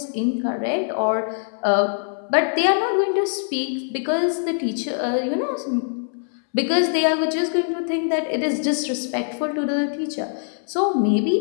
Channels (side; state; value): right; silent; 63 dB below the other